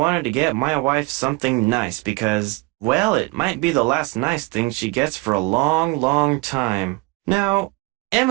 to get my wife something nice because, well, it might be the last nice thing she gets for a long, long time. Now,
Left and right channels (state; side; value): quieter; left; 24.6 dB